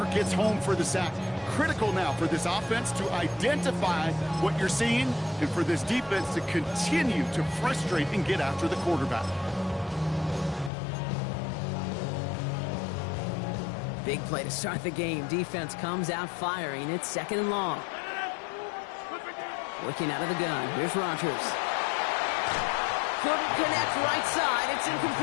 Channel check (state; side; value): drops out; right; at 10.7 s